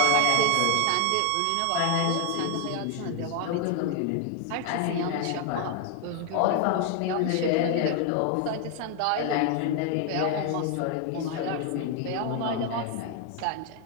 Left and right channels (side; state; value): both; different; correlation 0.01